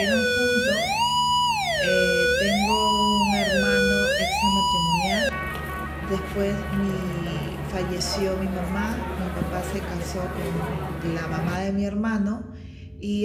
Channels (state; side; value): identical; both; correlation 1.00